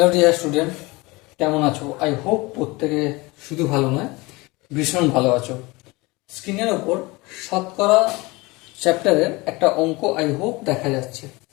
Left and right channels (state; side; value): quieter; right; 23.5 dB